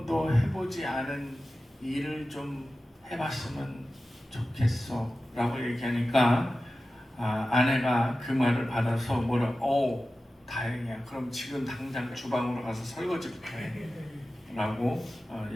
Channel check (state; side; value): normal; both; correlation 0.94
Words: 해보지 않은 일을 좀 해봤으면 좋겠어 라고 얘기하니까 아내가 그 말을 받아서 다행이야. 그럼 지금 당장 주방으로 가서 설거지부터 해 라고